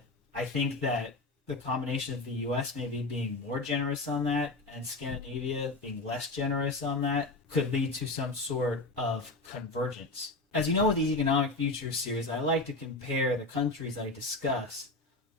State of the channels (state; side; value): quieter; right; 3.1 dB